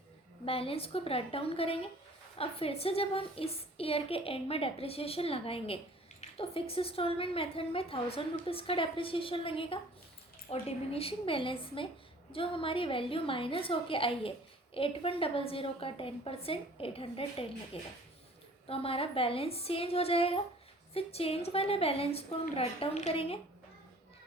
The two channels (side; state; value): both; normal; correlation 0.51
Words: बैलेंस को ब्रेक डाउन करेंगे। अब फिर से जब हम इस ईयर के एंड में डेप्रिसिएशन लगाएंगे तो फिक्स इंस्टॉलमेंट मेथड में 1,000 रुपीज़ का डेप्रिसिएशन लगेगा और डिमिनिशिंग बैलेंस में जो हमारी वैल्यू माइनस होके आई है 8,100 का 10% 810 लगेगा। तो हमारा बैलेंस चेंज हो जाएगा। फिर चेंज वाले बैलेंस को हम ब्रेक डाउन करेंगे।